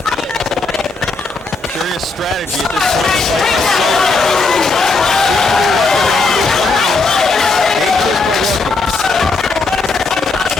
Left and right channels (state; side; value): quieter; right; 3.8 dB